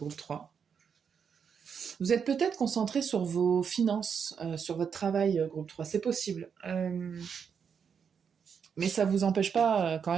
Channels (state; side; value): quieter; left; 6.8 dB